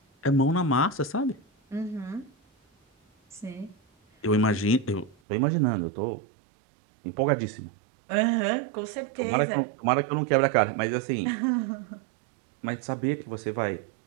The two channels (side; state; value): left; drops out; at 5.2 s